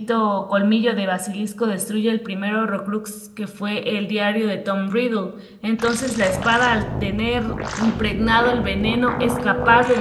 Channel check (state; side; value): identical; both; correlation 1.00